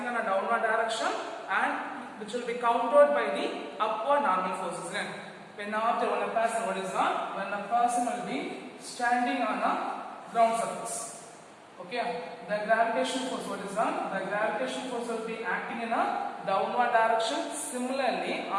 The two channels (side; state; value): both; identical; correlation 1.00